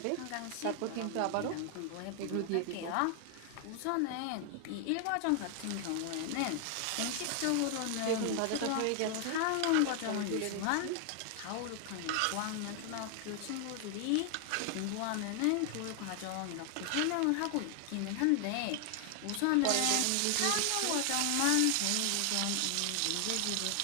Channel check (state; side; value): different; both; correlation 0.00